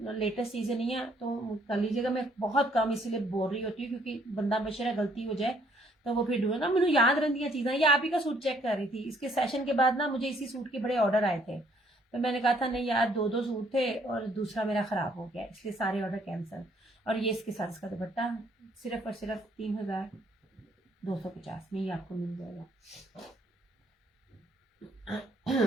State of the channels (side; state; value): both; normal; correlation 0.65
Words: लेटेस्ट सीजन नहीं है तो कर लीजिएगा। मैं बहुत कम इसीलिए बोल रही होती हूँ क्योंकि बंदा बेचारा गलती हो जाए तो वो फिर ढूंढो ना। मुझे याद रहती चीज़ें। ये आप ही का सूट चेक कर रही थी, इसके सेशन के बाद ना मुझे इसी सूट के बड़े ऑर्डर आए थे, तो मैंने कहा था नहीं यार 2 सूट थे और दूसरा मेरा खराब हो गया, इसलिए सारे ऑर्डर कैंसिल। और ये इसके साथ इसका दुपट्टा सिर्फ और सिर्फ 3250 में ही आपको मिल जाएगा।